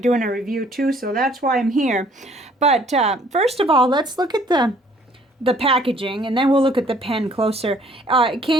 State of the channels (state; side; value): normal; both; correlation 0.60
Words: doing a review too, so that's why I'm here. But first of all, let's look at the packaging, and then we'll look at the pen closer. It